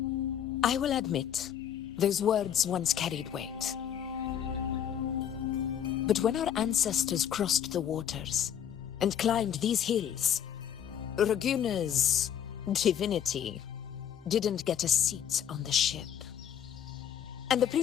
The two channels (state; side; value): quieter; right; 9.4 dB